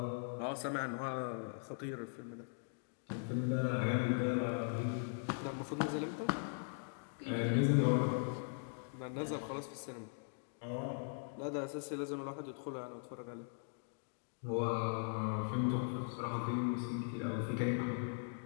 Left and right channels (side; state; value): right; silent; digital silence